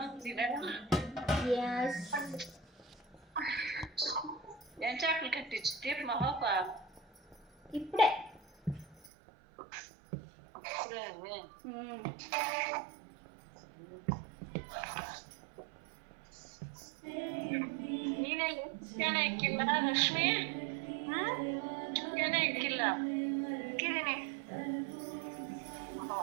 తినడం. ఏం చేపలు కట్టించి తీపి మా పాప ఇప్పుడే. ನೀನೇ ಚಿಕನ್ ಹಾಕಿಲ್ಲ ಲಕ್ಷ್ಮಿ? ಚಿಕನ್ ಹಾಕಿಲ್ಲ. ಹಾಕಿದ್ದೀನಿ.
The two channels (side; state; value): left; drops out; at 9.1 s